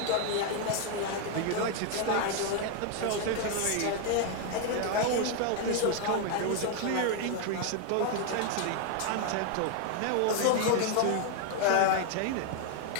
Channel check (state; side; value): different; both; correlation 0.01